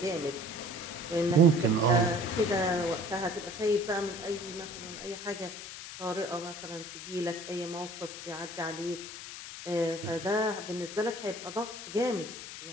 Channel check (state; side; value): noise; left; hiss, 10 dB below the sound